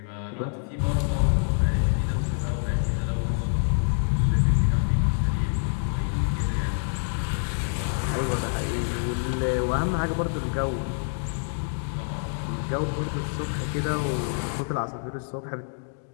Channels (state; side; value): silent; right; digital silence